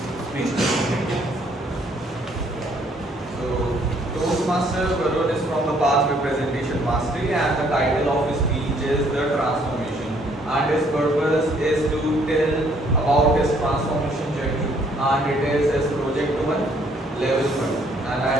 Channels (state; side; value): normal; both; correlation 0.65